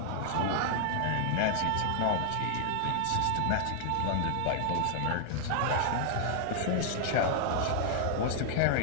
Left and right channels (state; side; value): different; both; correlation 0.00